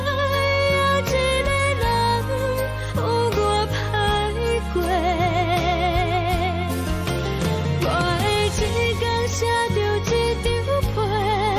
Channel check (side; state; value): both; identical; correlation 1.00